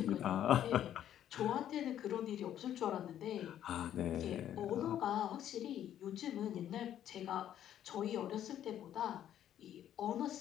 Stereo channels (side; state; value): right; quieter; 10.9 dB